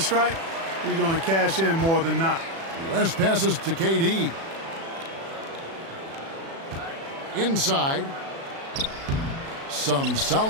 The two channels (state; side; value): late; left; 36 ms